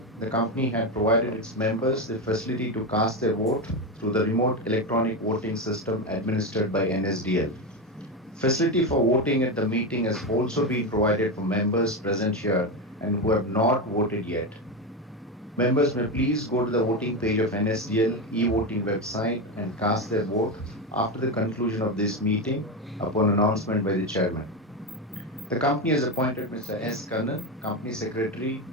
the company had provided its members the facility to cast their vote through the remote electronic voting system administered by NSDL. Facility for voting at the meeting has also been provided for members present here and who have not voted yet. Members may please go to the voting page of NSDL e-voting website and cast their vote after the conclusion of this meeting upon announcement by the chairman. The company has appointed Mr. S. Kannan, Company Secretary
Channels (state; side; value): normal; both; correlation 0.14